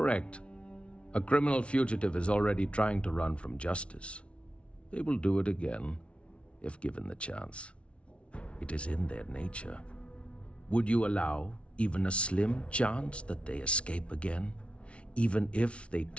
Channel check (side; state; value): right; late; 0.060 ms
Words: A criminal fugitive is already trying to run from justice. They will do it again, if given the chance. It is in their nature. Would you allow even a slim chance that they escape again, Even if they